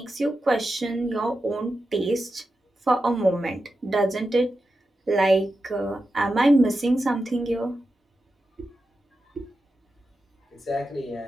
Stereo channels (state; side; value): normal; both; correlation 0.90